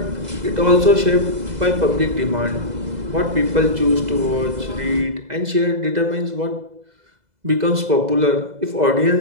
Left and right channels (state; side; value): late; left; 2.0 ms